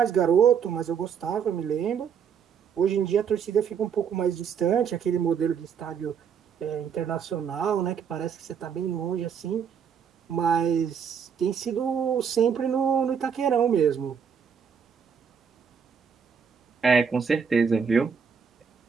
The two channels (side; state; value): left; quieter; 7.1 dB